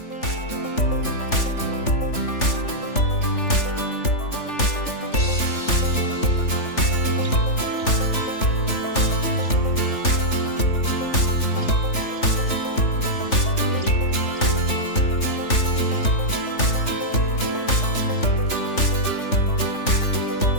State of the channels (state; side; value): late; right; 3.4 ms